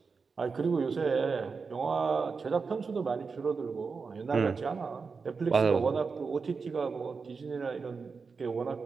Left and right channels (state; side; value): quieter; left; 4.9 dB